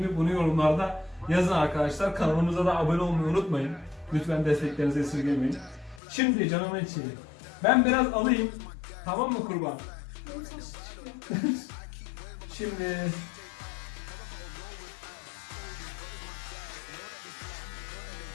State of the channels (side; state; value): right; drops out; at 6.0 s